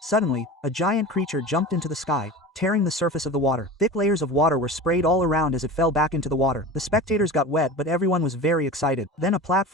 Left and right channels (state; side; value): normal; both; correlation 0.33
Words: Suddenly, a giant creature jumped into the sky, tearing the surface of the water. Thick layers of water were sprayed all around as it fell back into the water. The spectators got wet, but everyone was very excited. Then a